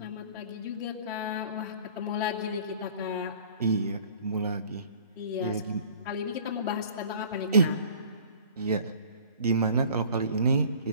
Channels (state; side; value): inverted; both; correlation -0.48